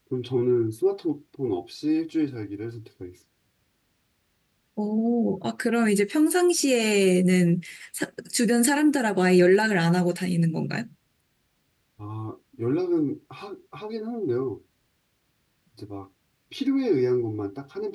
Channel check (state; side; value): identical; both; correlation 1.00